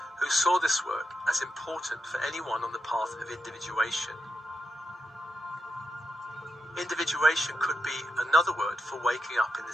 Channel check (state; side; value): normal; both; correlation 0.87